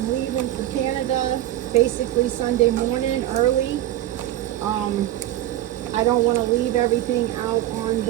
leaving for Canada basically Sunday morning early, I don't want to leave everything out on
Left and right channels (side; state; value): left; quieter; 13.7 dB